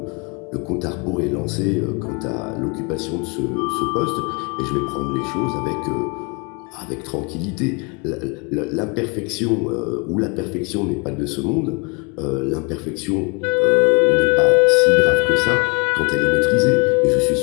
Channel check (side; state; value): right; quieter; 31.6 dB